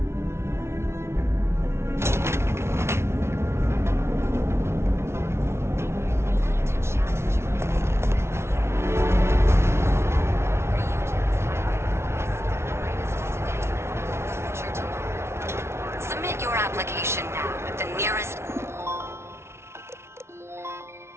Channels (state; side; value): late; left; 0.13 ms